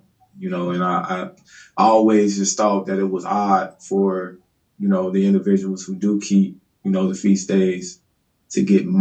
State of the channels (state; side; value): identical; both; correlation 1.00